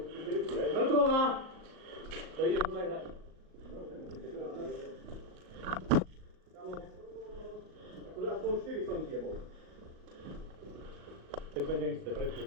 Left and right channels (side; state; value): left; late; 38 ms